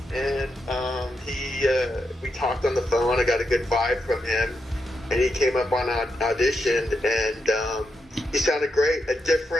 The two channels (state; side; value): normal; both; correlation 0.84